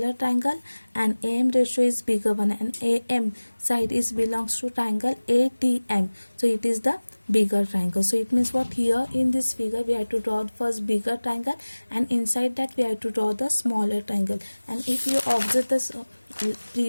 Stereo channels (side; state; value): both; inverted; correlation -1.00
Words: triangle and AM ratio is bigger one, and AM side is belongs to triangle ATM. So it is the bigger triangle. So it means what? Here in this figure we have to draw the first bigger triangle, and inside that we have to draw the smaller triangle. And if you observe this